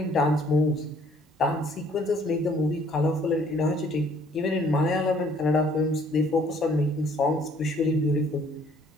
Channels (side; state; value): both; normal; correlation 0.61